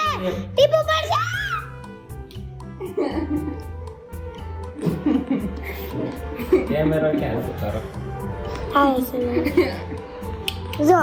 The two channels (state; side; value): identical; both; correlation 1.00